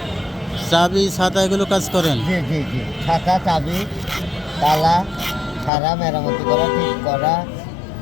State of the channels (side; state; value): right; drops out; at 5.7 s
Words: চাবি ছাতা এগুলো কাজ করেন? জি জি জি, ছাতা, চাবি, তালা, সারা মেরামতি করা, ঠিক করা।